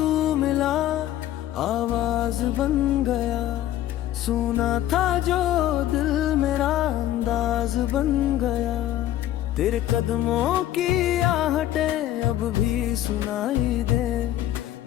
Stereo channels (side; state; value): right; quieter; 13.1 dB